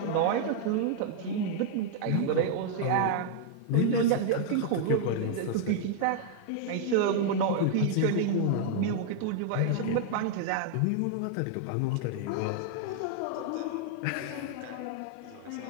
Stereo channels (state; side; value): different; both; correlation -0.01